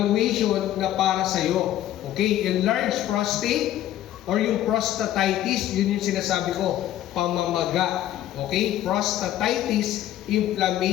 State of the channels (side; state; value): right; quieter; 12.8 dB